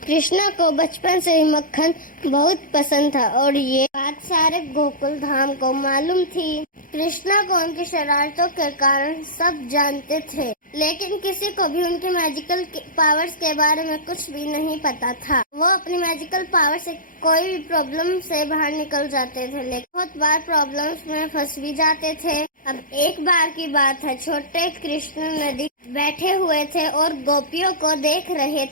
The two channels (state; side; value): late; right; 0.40 ms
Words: कृष्णा को बचपन से ही मक्खन बहुत पसंद था और ये बात सारे गोकुल धाम को मालूम थी। कृष्णा को उनकी शरारतों के कारण सब जानते थे, लेकिन किसी को भी उनके मैजिकल पावर्स के बारे में कुछ भी नहीं पता था। वो अपनी मैजिकल पावर से कोई भी प्रॉब्लम से बाहर निकल जाते थे, लेकिन बहुत बार प्रॉब्लम्स में फंस भी जाते थे। अब एक बार की बात है, छोटे कृष्ण नदी बैठे हुए थे और गोपियों को देख रहे